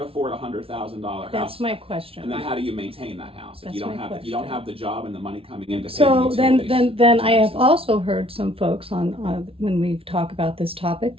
afford a $100,000 house? That's my And question. then how do you maintain that house if That's you don't my have question. the job and the money coming in to pay So the then, utilities, then I have taxes? also heard some folks on when we talk about this topic,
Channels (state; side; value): late; left; 0.27 ms